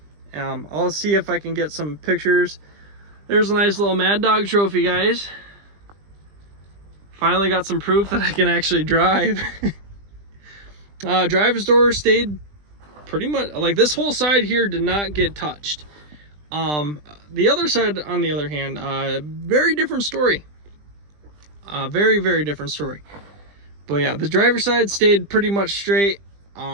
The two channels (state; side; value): late; left; 20 ms